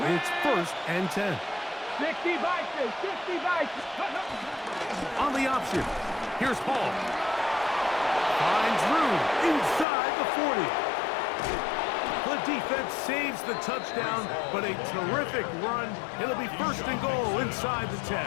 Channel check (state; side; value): drops out; right; at 9.9 s